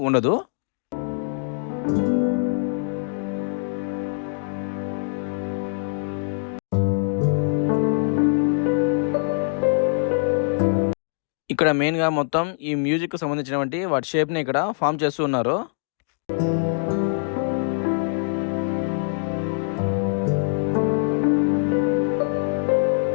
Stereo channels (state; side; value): silent; right; digital silence